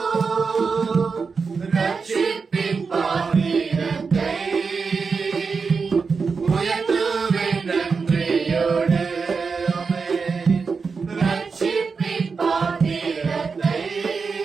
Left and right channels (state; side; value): quieter; left; 5.0 dB